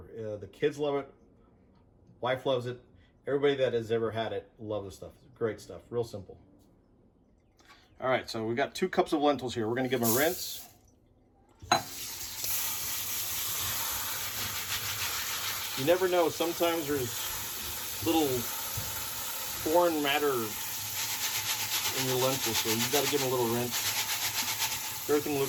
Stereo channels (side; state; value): both; identical; correlation 1.00